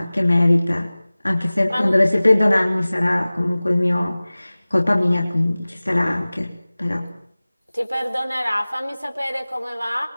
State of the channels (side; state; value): both; inverted; correlation -0.99